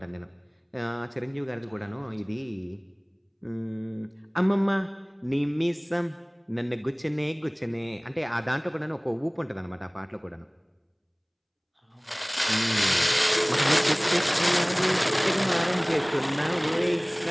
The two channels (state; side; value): identical; both; correlation 1.00